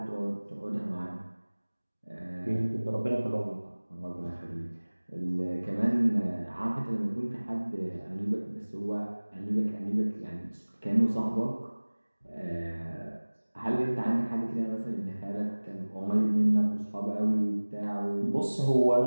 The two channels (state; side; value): inverted; both; correlation -1.00